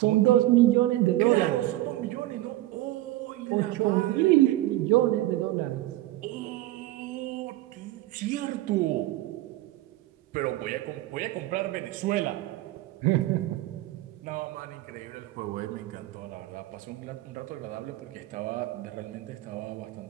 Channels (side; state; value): left; quieter; 16.2 dB